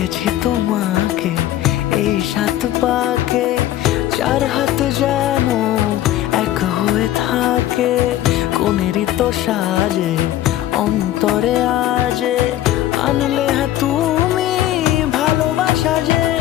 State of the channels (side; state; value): right; quieter; 13.4 dB